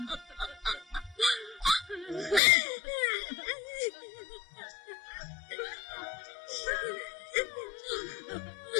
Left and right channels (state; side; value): drops out; right; at 2.4 s